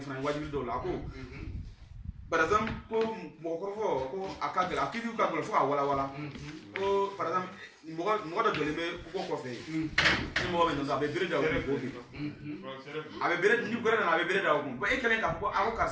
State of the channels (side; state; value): both; identical; correlation 1.00